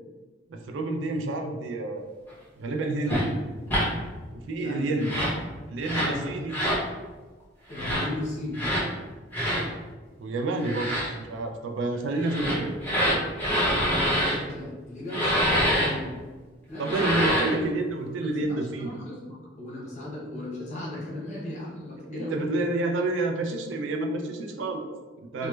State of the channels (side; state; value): both; normal; correlation 0.37